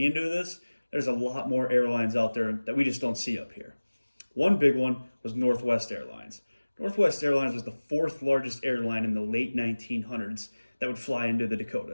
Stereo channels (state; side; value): inverted; both; correlation -1.00